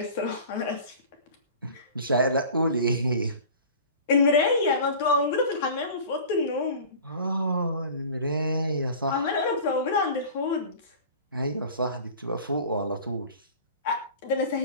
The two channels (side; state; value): both; inverted; correlation -0.40